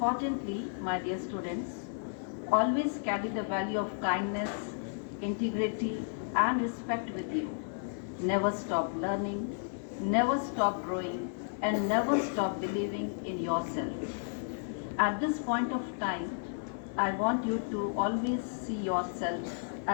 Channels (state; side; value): silent; right; digital silence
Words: my dear students, always carry the value of kindness, integrity, and respect with you. Never stop learning, never stop growing, and never stop believing in yourself. At this point of time, I want you to always see yourself